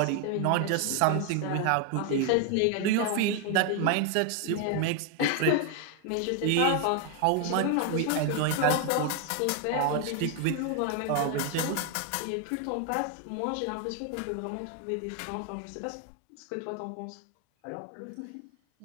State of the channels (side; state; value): both; different; correlation 0.01